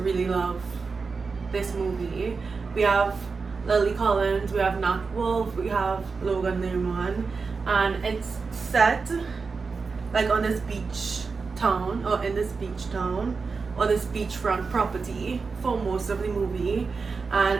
really love this movie. We have Lily Collins, we have Nat Wolff, we have Logan Lerman, and it's set like on this beach town, or in this beach town, or this beachfront property for most of the movie,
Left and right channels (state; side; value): quieter; left; 4.7 dB